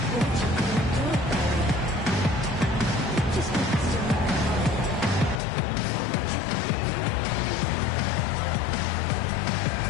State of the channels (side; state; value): right; drops out; at 5.4 s